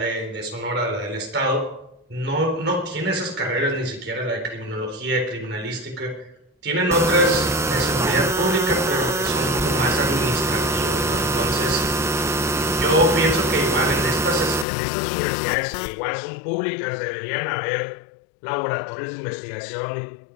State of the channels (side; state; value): right; drops out; at 14.7 s